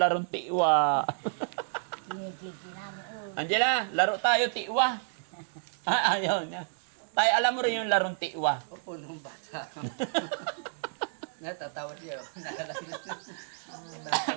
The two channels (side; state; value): left; silent; digital silence